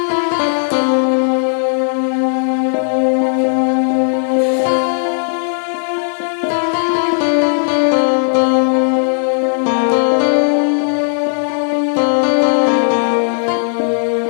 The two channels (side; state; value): right; silent; digital silence